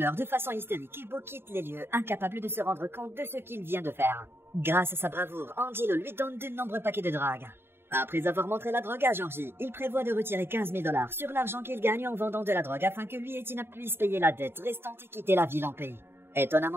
de façon hystérique et Bo quitte les lieux, incapable de se rendre compte de ce qu'il vient de faire. Grâce à sa bravoure, Angelo lui donne de nombreux paquets de drogue. Après avoir montré la drogue à Georgie, il prévoit de retirer 15 000 $ sur l'argent qu'il gagne en vendant de la drogue afin que lui et Tina puissent payer la dette restante et quitter la ville en paix.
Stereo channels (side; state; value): left; late; 0.11 ms